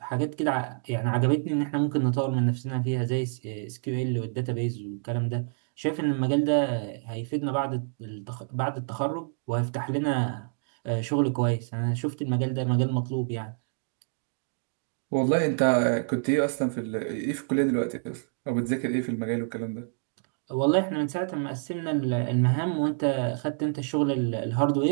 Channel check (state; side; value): silent; left; digital silence